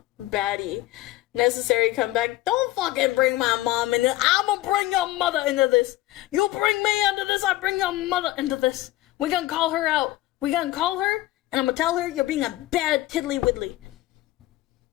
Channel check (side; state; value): right; quieter; 16.9 dB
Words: baddie. Necessary comeback. Don't fucking bring my mom into this. I'ma bring your mother into this. You bring me into this, I bring your mother into this. We gonna call her out. We gonna call her, and I'm gonna tell her you're being a bad tiddly widdly.